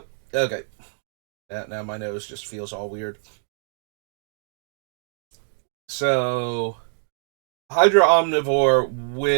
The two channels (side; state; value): left; silent; 62 dB below the other